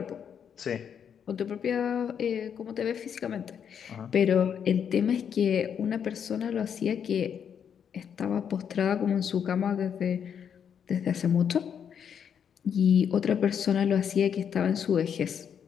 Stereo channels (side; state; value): right; quieter; 7.9 dB